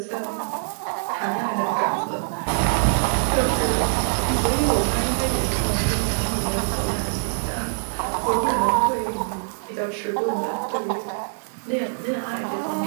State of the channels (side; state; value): left; silent; digital silence